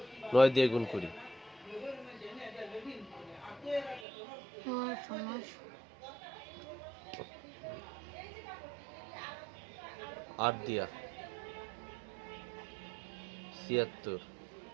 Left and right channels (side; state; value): left; drops out; at 4.0 s